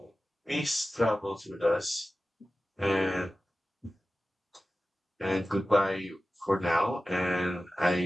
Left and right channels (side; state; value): both; normal; correlation 0.95